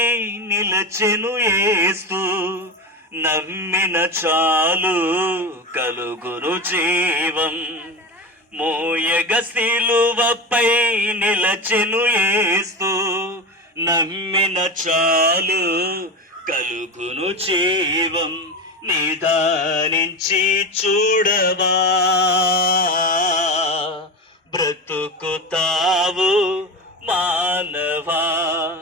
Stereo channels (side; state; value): both; normal; correlation 0.22